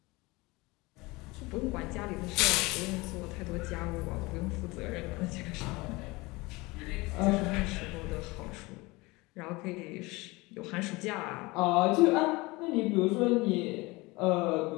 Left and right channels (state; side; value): quieter; right; 23.2 dB